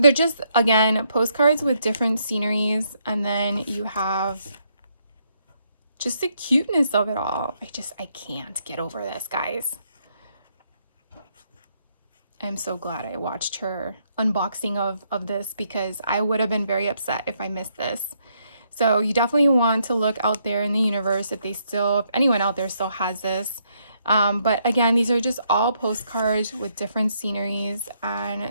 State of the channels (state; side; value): inverted; both; correlation -0.73